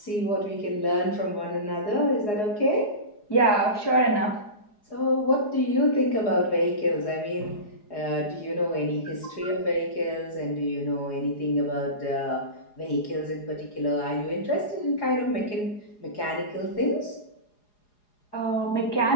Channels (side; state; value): right; late; 4.8 ms